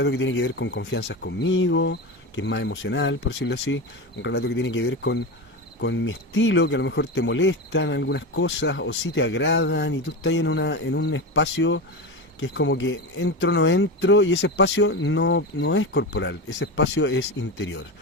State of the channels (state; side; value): normal; both; correlation 0.21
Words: que tiene que ver con confianzas conmigo, que es más emocional, por decirlo así, un relato que tiene que ver con mi estilo, que a lo mejor te molestan algunas cosas o sí te agradan y tú estás en un espacio que es como que entro o no entro y ese espacio no es corporal, ese espacio es interior.